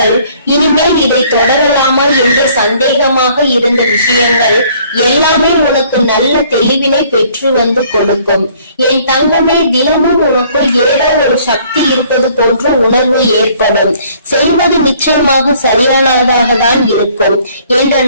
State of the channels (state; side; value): inverted; both; correlation -0.59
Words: இனிமேல் இதை தொடரலாமா என்று சந்தேகமாக இருந்த விஷயங்கள் எல்லாமே உனக்கு நல்ல தெளிவினை பெற்று வந்து கொடுக்கும். என் தங்கமே, தினமும் உனக்குள் ஏதோ ஒரு சக்தி இருப்பது போன்ற உணர்வு ஏற்படும். செய்வது நிச்சயமாக சரியானதாக தான் இருக்கும் என்ற